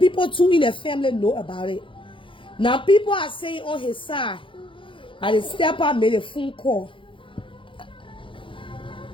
too in the family know about it. Now people are saying on his side that the stepper made a phone call.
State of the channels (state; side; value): late; right; 0.25 ms